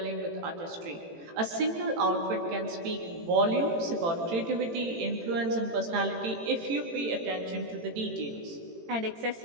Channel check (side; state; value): left; late; 18 ms